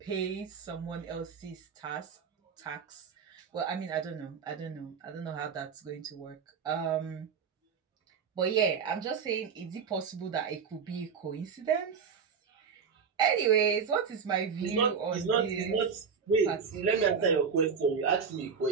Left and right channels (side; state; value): left; quieter; 6.3 dB